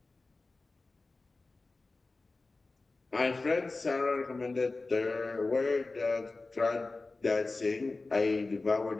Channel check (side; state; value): right; quieter; 3.5 dB